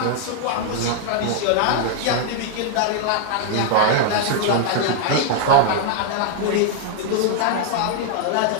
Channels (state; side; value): different; both; correlation 0.00